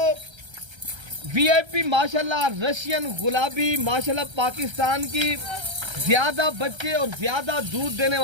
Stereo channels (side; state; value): left; late; 1.3 ms